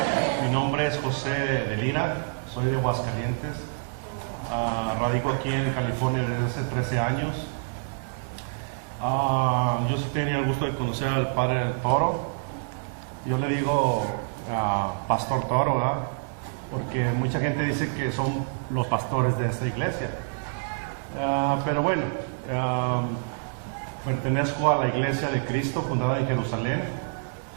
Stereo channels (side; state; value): left; silent; digital silence